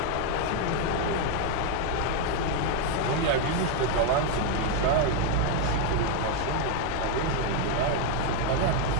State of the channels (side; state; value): both; different; correlation 0.01